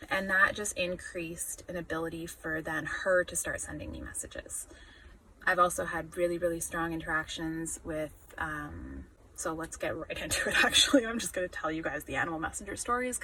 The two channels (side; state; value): both; identical; correlation 1.00